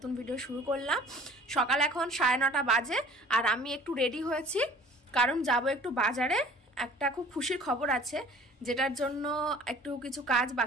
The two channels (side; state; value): both; normal; correlation 0.49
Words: ভিডিও শুরু করলাম। সকাল এখন 9:30 বাজে আর আমি একটু রেডি হয়েছি কারণ যাব একটু বাজারে। একটা খুব খুশির খবর আছে যেটার জন্য একটু কিছু কাজ